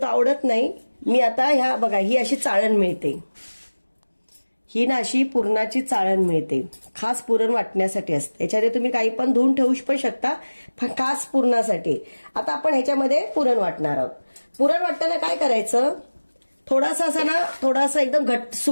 आवडत नाही. मी आता ह्या बघा ही अशी चाळण मिळते, ही ना अशी पुरणाची चाळण मिळते, खास पुरण वाटण्यासाठी असते. याच्यामध्ये तुम्ही काही पण धुवून ठेवू पण शकता, खास पुरणासाठी. आता आपण ह्याच्यामध्ये पुरण वाटणार आहोत. पुरण वाटताना काय करायचं, थोडासा असा ना, थोडासा एकदम घट्ट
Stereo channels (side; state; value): both; inverted; correlation -1.00